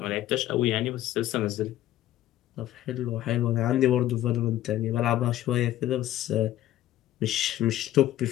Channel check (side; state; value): right; quieter; 13.5 dB